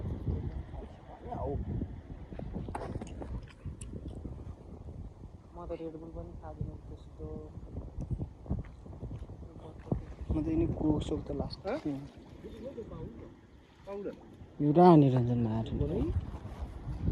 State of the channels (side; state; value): both; identical; correlation 1.00